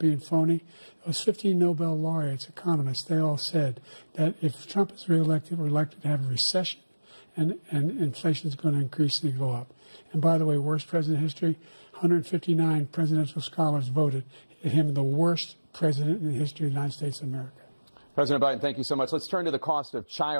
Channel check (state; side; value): inverted; both; correlation -1.00